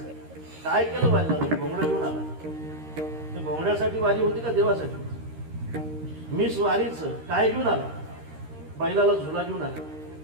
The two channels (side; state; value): left; late; 13 ms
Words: काय केलं वारीला? घोंगडं घेऊन आला. घोंगड्यासाठी वारी होती का देवासाठी? मिस वारीचं काय घेऊन आला? बैलाला झुला घेऊन आला.